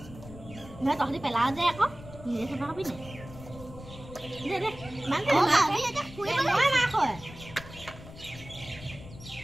নহয় তহঁতি পেলাও যে আকৌ নিজে চাফা খাবি নাই দে দে মান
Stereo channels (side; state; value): left; noise; rumble, 16 dB below the sound